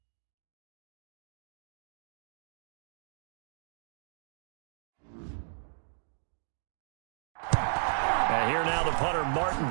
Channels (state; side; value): silent; left; digital silence